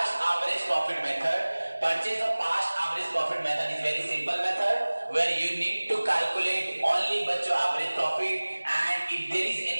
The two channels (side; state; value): both; inverted; correlation -1.00